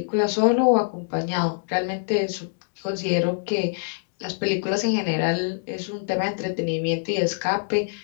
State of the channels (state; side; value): silent; right; digital silence